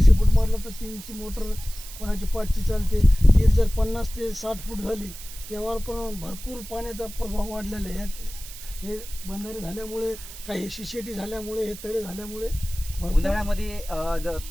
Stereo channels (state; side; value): noise; right; hiss, 14 dB below the sound